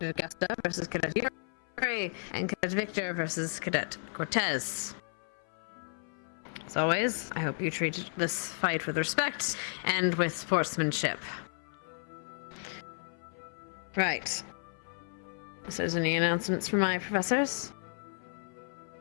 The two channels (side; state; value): right; silent; 55 dB below the other